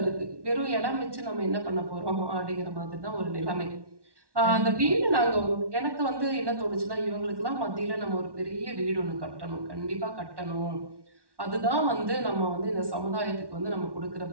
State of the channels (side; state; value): left; late; 1.1 ms